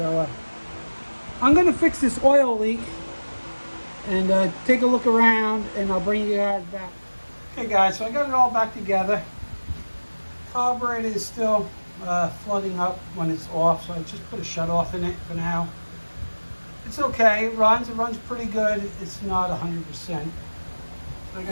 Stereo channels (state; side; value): inverted; both; correlation -1.00